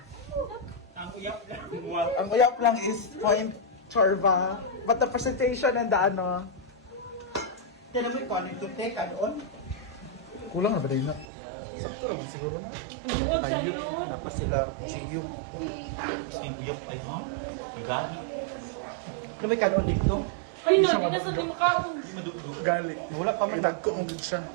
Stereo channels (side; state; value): left; drops out; at 11.2 s